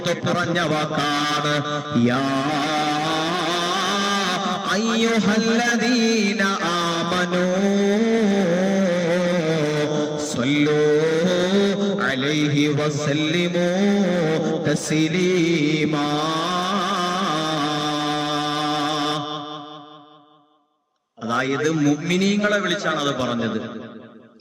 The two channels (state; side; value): identical; both; correlation 1.00